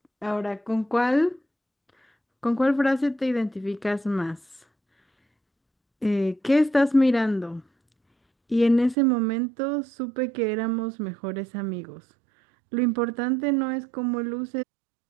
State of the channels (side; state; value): left; drops out; at 9.0 s